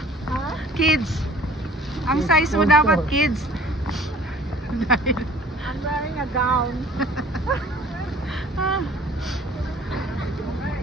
Kids. Ang size mo dapat kids. Dahil I'm wearing a gown.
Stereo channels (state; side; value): normal; both; correlation 0.49